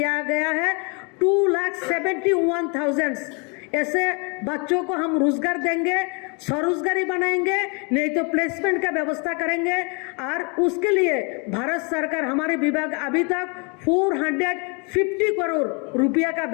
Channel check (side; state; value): right; quieter; 33.1 dB